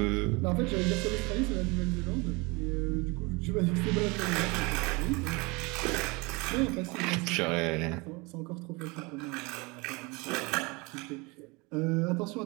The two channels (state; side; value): quieter; left; 26.4 dB